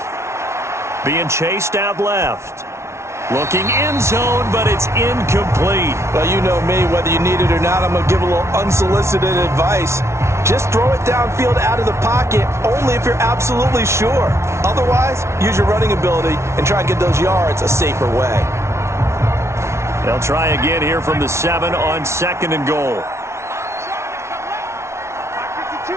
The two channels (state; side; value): late; left; 0.13 ms